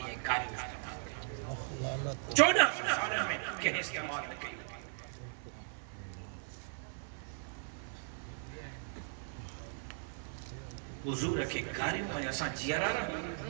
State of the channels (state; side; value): silent; left; 53 dB below the other